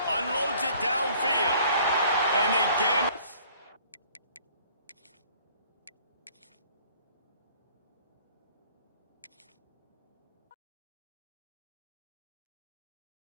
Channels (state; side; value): inverted; both; correlation -0.55